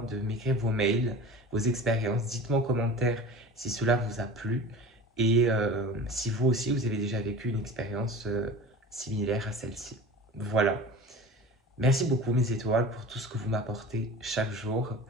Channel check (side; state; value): both; normal; correlation 0.37